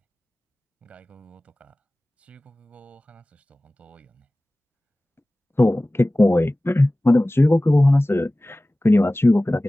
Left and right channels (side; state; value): both; normal; correlation 0.98